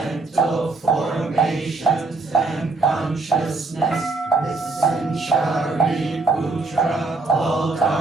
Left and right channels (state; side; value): quieter; left; 3.5 dB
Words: formations, and consciousness. Listen, Shariputra, all